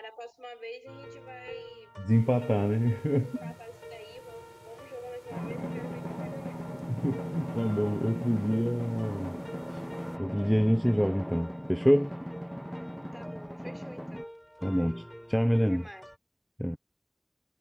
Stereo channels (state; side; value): identical; both; correlation 1.00